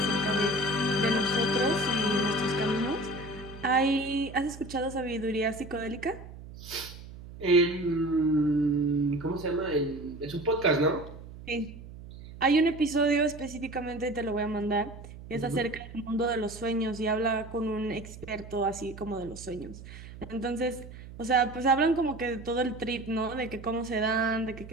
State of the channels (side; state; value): right; noise; hum, 15 dB below the sound